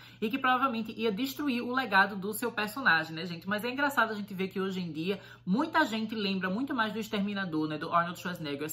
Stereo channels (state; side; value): identical; both; correlation 1.00